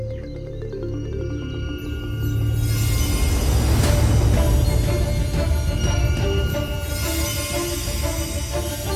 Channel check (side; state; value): both; identical; correlation 1.00